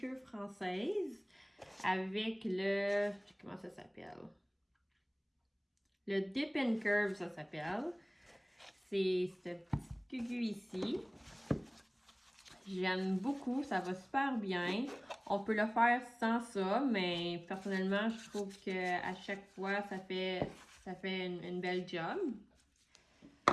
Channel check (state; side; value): identical; both; correlation 1.00